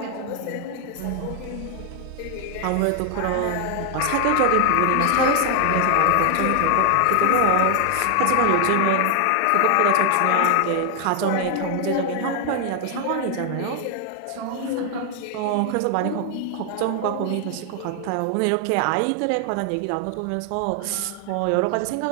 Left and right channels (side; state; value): both; different; correlation 0.00